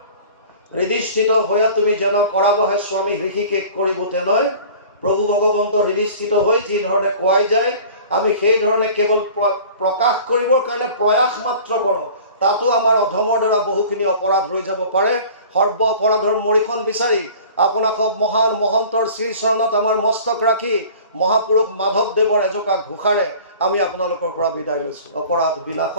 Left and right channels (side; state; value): both; inverted; correlation -0.44